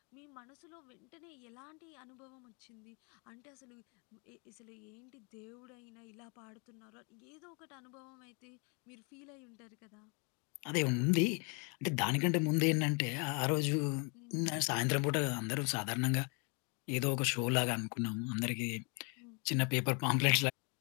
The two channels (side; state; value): right; quieter; 34.3 dB